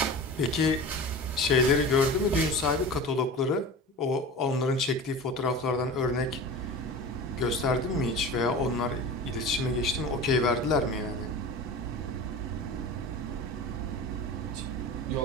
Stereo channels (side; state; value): both; normal; correlation 0.33